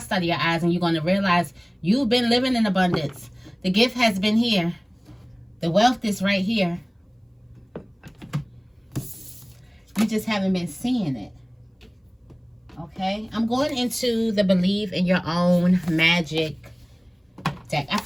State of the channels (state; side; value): identical; both; correlation 1.00